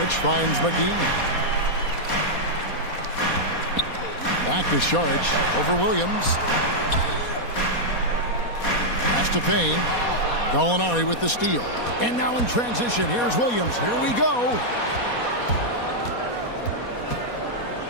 finds McGee. Back to Sharch over Williams. Pass to Payne. Gallinari with the steal. And now in transition, here's Williams. Here we go.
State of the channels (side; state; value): right; late; 4.2 ms